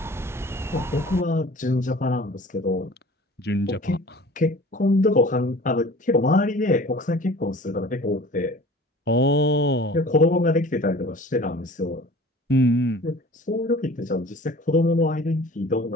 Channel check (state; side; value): normal; both; correlation 0.45